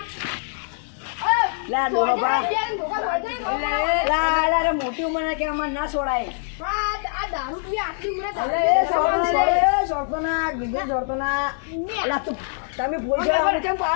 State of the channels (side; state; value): right; silent; digital silence